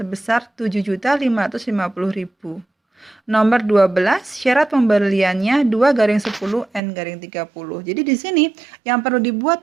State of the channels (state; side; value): drops out; left; at 6.8 s